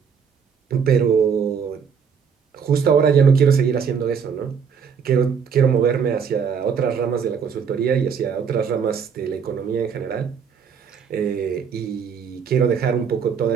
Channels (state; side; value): quieter; left; 6.7 dB